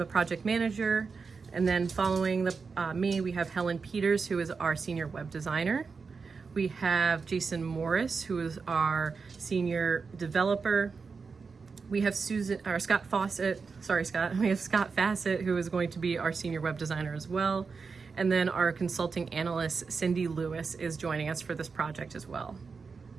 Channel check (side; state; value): left; quieter; 5.0 dB